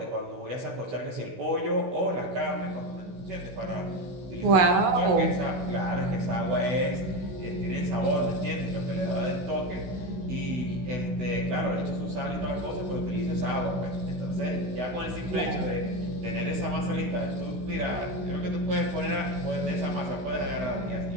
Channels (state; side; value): late; left; 16 ms